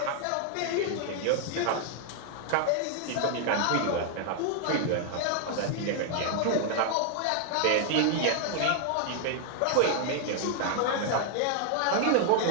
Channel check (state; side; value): different; both; correlation 0.00